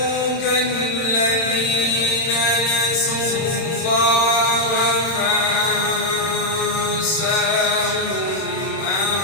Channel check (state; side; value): late; right; 31 ms